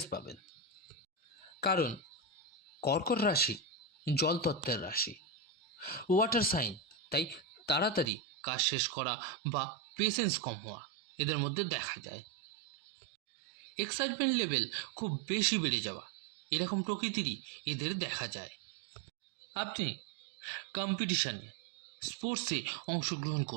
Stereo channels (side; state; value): left; drops out; at 8.1 s